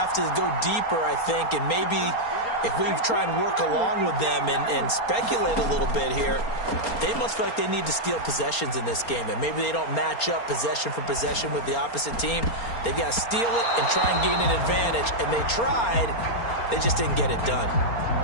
to go deeper, I think, and maybe if we try and work along with them and speculate a little bit here, they must feel like they need to steal possessions in this game, and maybe they don't match up possession for possession with the opposite team. They've got to steal it and try and gain an advantage, and they tried. They just didn't get it done.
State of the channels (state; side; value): late; right; 4.3 ms